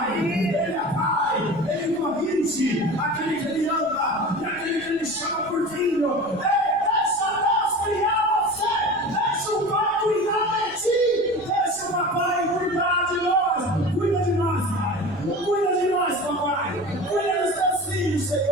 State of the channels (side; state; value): right; noise; rumble, 25 dB below the sound